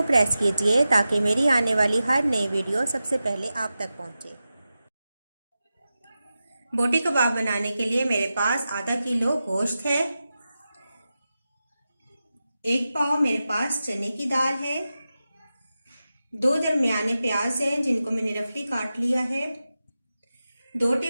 प्रेस कीजिए ताकि मेरी आने वाली हर नई वीडियो सबसे पहले आप तक पहुँचे। बोटी कबाब बनाने के लिए मेरे पास आधा किलो गोश्त है, 1 पाव मेरे पास चने की दाल है, 2 दरमियाने प्याज हैं जिनको मैंने रफली काट लिया है, 2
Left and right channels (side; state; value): both; inverted; correlation -0.93